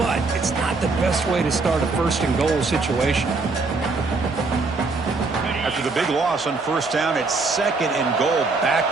it's not the best way to start a first and goal situation. After the big loss on first down, it's second and goal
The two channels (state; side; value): quieter; left; 3.9 dB